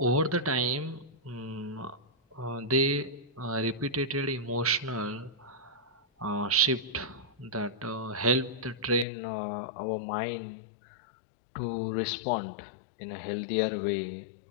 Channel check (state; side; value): drops out; right; at 9.1 s